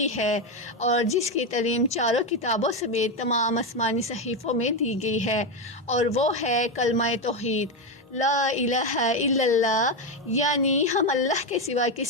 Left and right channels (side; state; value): both; normal; correlation 0.10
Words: ہے اور جس کی تعلیم چاروں کتابوں سمیت تمام آسمانی صحیفوں میں دی گئی ہے، اور وہ ہے کلمہ توحید، لا الہ الا اللہ، یعنی ہم اللہ کے سوا